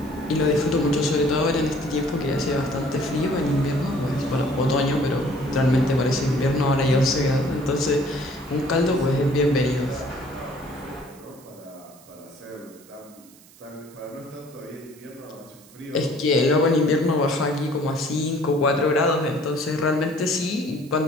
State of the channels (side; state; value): right; noise; hiss, 25 dB below the sound